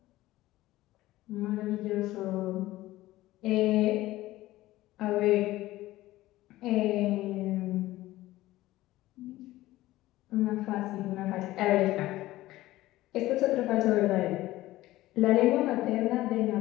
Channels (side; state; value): right; quieter; 16.6 dB